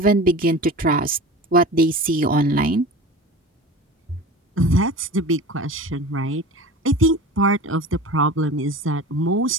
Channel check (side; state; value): both; normal; correlation 0.35